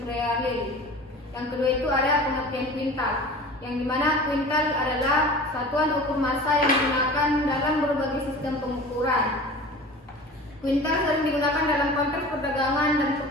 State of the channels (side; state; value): both; normal; correlation 0.38